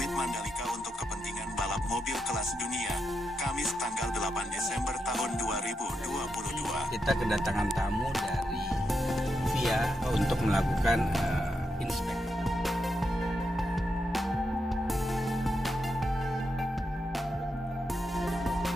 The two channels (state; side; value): normal; both; correlation 0.84